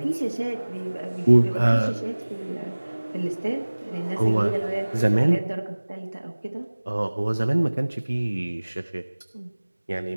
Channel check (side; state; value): both; inverted; correlation -1.00